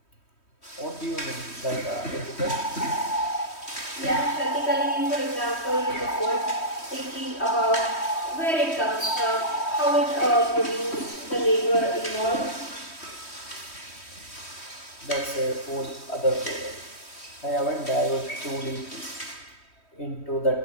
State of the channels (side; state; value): right; late; 3.1 ms